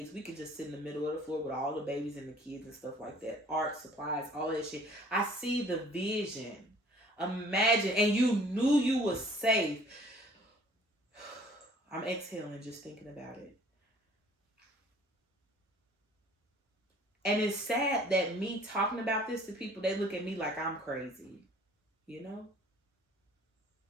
We could just sit in the middle of the floor with all the babies and the kids and stuff like that. Art, supplies, all that shit. I see the vision. Imagine, and you knew you was safe. I'm exhaling just thinking about it. And it's sad that me talking about this to people, they look at me like I'm crazy.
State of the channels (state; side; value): normal; both; correlation 0.53